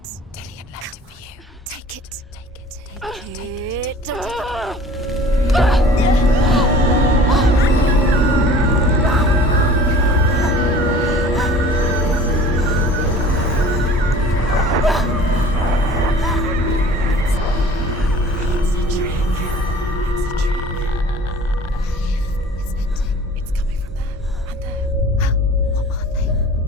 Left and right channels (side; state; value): both; normal; correlation 0.46